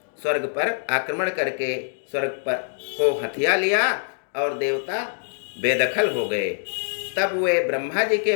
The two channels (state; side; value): silent; right; digital silence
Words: स्वर्ग पर आक्रमण करके स्वर्ग पर को हथिया लिया और देवता बेदखल हो गए। तब वे ब्रह्मा जी के